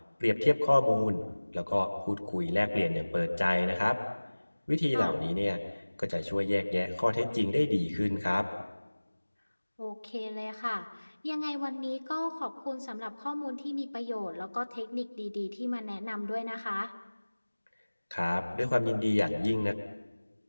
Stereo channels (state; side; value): inverted; both; correlation -1.00